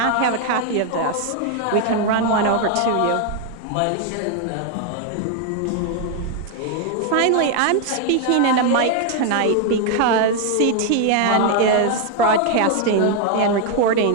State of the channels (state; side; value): different; both; correlation 0.01